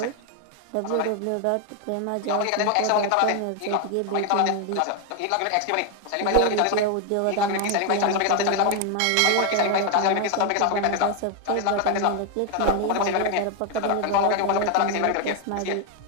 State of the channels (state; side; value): different; both; correlation 0.01